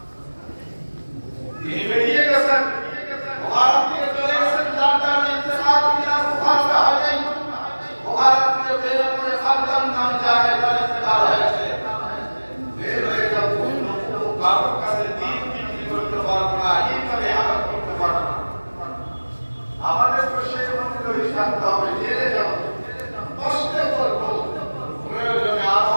তিনি বেরিয়ে গেছেন বুখারী থেকে চলে গেছেন যার কারণে ইন্তেকাল মিনাল বুখারী হয় বুখারী থেকে বের করে খালদান নামে জায়গায় তার ইন্তেকাল হয়েছে বের হয়ে যাব কারোর কাছে দিন বিক্রি করতে পারবো না এইভাবে আঘাত করতে পারবো না আমাদের তো সেই অনুযায়ী থাকতে হবে জেলে যাব কষ্টে করবো প্রয়োজনে আরো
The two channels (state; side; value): inverted; both; correlation -1.00